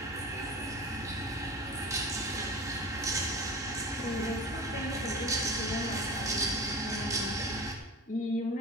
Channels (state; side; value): normal; both; correlation 0.33